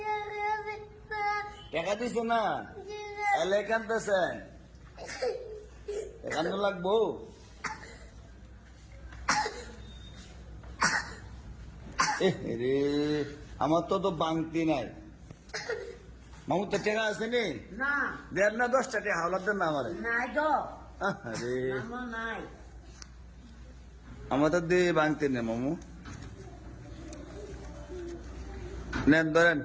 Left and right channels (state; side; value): identical; both; correlation 1.00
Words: টাকা দিছে না, এলে কানতেছেন, কান্দন লাগবো। রে আমার তো বাংতি নাই। মামুর তো টাকা আছে নি? না, 1.5 না 10টা টাকা হাওলার দেন না আমার। নাই তো। আরে আমার নাই। আমার তো দিয়ে বাংতি নেই মামু। নেন ধরেন।